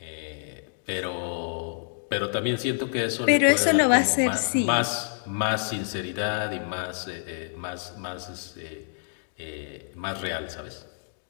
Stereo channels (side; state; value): right; silent; digital silence